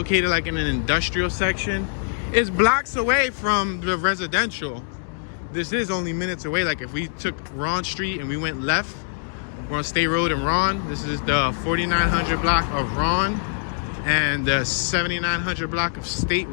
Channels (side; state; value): right; silent; digital silence